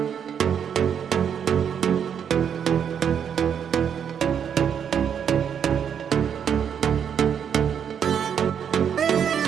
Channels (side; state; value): left; quieter; 8.0 dB